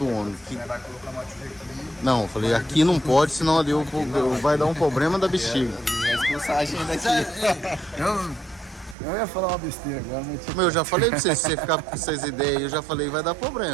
homem. Vai colocar uma trilha aqui. Não, eu falei, aqui não pode, senão ali vai dar um problema da bexiga. Vai expulsar a gente daqui. Eu ia falar uma besteira agora, mas... Eu já falei pra você, se você ficar com essas ideias, eu já falei, vai dar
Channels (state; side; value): drops out; left; at 9.0 s